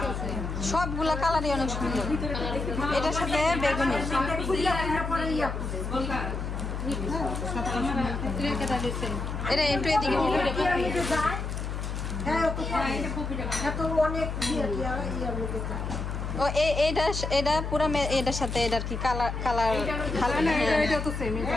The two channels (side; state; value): left; noise; hum, 4 dB below the sound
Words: সবগুলা কালারই অনেক সুন্দর। এটার সাথে বেগুনি। এটা একটু এদিকে অনেক ও এটা পুরা এটার সাথে এটার কি কালার কালার এটা তো সেম এটা